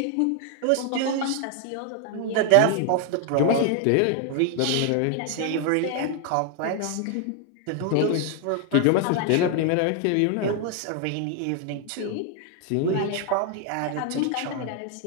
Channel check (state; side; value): different; both; correlation 0.00